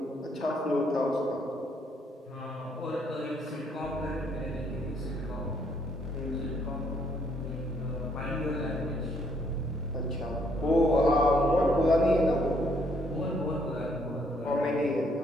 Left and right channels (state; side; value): normal; both; correlation 0.69